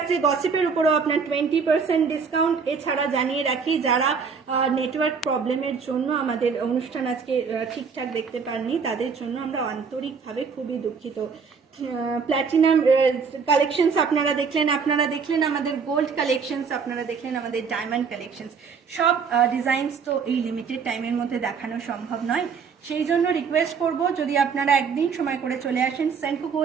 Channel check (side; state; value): left; quieter; 5.8 dB